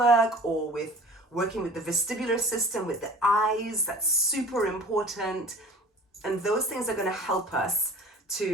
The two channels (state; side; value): normal; both; correlation 0.44